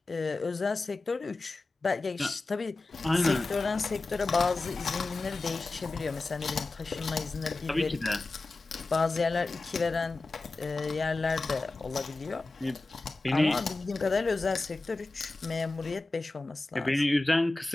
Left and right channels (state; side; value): quieter; right; 3.3 dB